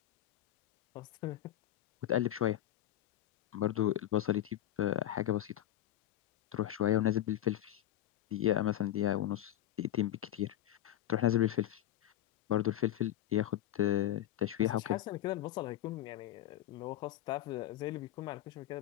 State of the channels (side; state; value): right; quieter; 12.5 dB